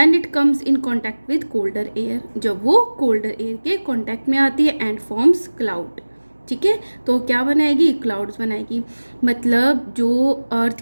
it comes in contact with colder air. जब वो कोल्डर एयर के कॉन्टैक्ट में आती है एंड फॉर्म्स क्लाउड. ठीक है, तो क्या बनाएगी? क्लाउड्स बनाएगी. मतलब जो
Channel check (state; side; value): inverted; both; correlation -1.00